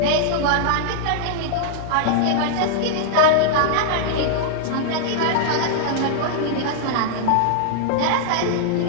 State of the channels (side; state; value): both; different; correlation -0.01